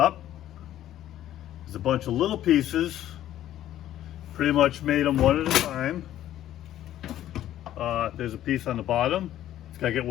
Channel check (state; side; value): quieter; right; 12.6 dB